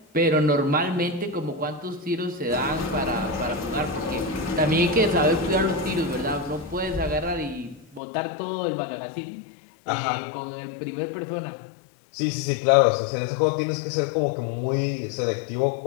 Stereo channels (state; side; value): drops out; right; at 8.0 s